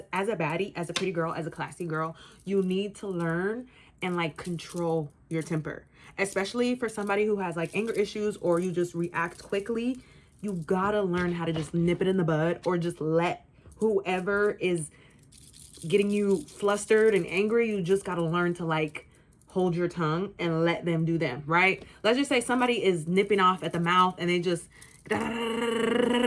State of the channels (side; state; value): both; identical; correlation 1.00